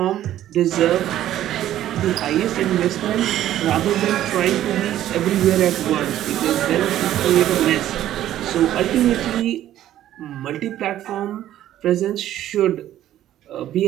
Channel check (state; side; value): quieter; left; 12.5 dB